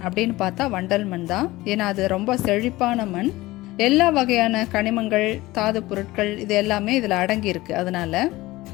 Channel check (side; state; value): right; quieter; 18.9 dB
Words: அப்படின்னு பார்த்தா வண்டல் மண் தான். ஏன்னா அது ரொம்ப செழிப்பான மண். எல்லா வகையான கனிமங்கள், தாது பொருட்கள் இது எல்லாமே இதில் அடங்கியிருக்கு. அதனால